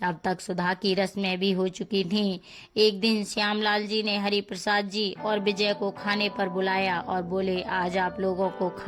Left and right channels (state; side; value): identical; both; correlation 1.00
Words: अब तक सुधा की रस्में भी हो चुकी थीं। एक दिन श्यामलाल जी ने हरि प्रसाद जी और विजय को खाने पर बुलाया और बोले, आज आप लोगों को